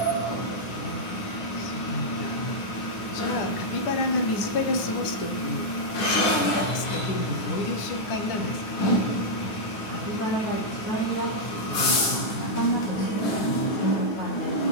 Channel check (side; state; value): right; late; 9.7 ms